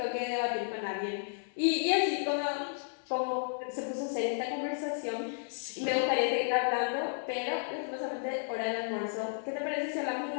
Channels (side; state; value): right; silent; 56 dB below the other